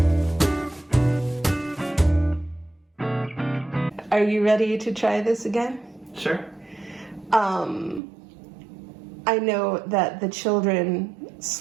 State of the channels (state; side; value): drops out; left; at 8.0 s